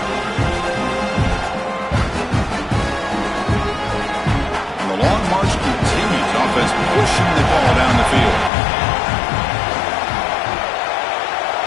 And the long march continues. Offense pushing the ball down the field.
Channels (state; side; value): drops out; right; at 8.5 s